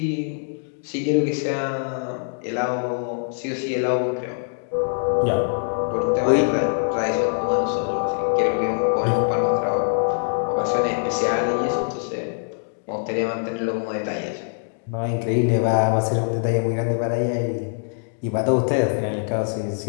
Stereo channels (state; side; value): silent; right; digital silence